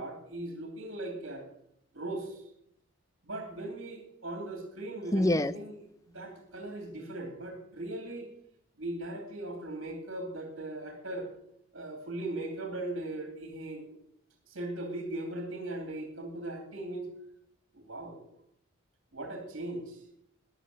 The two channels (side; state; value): both; normal; correlation 0.53